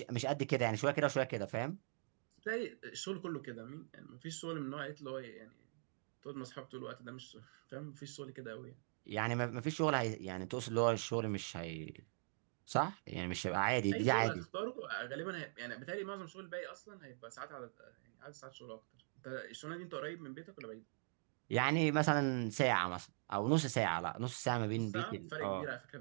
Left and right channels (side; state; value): left; silent; digital silence